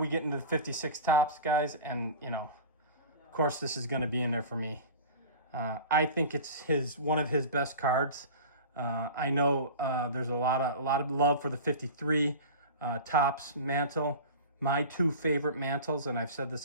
get into the 56 Topps, guys, and you know, of course this is going to be in there for me. I think it's one of his best cards. I know there's a lot of love for the 53 Topps mantle. My two favorite mantles, and I've said this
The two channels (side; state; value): both; inverted; correlation -0.34